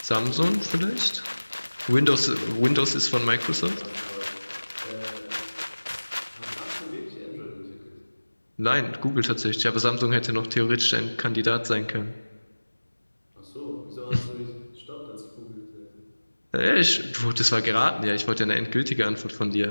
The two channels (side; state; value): both; inverted; correlation -1.00